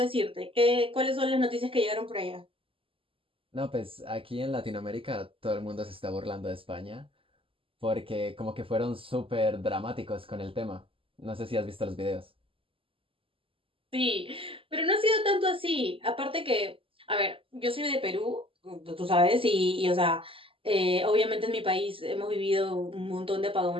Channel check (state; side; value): late; left; 0.26 ms